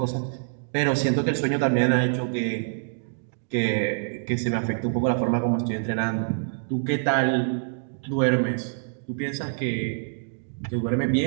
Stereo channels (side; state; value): left; silent; digital silence